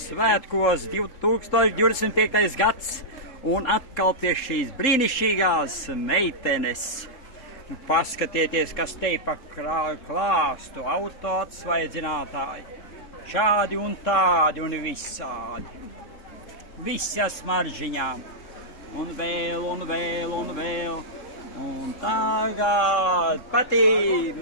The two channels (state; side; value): late; right; 3.8 ms